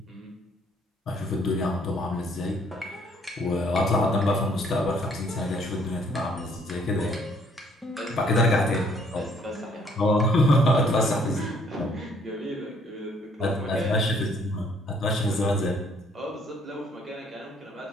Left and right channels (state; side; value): normal; both; correlation 0.63